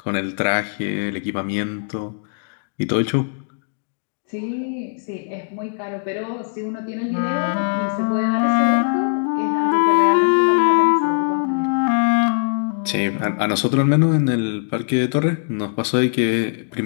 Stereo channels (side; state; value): right; silent; digital silence